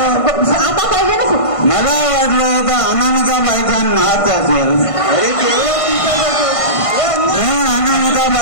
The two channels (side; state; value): right; late; 1.5 ms